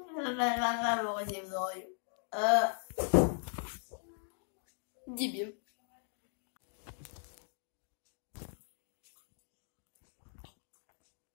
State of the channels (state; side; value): silent; right; 52 dB below the other